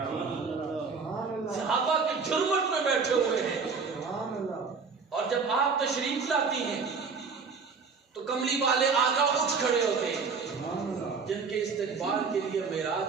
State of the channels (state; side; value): quieter; left; 5.0 dB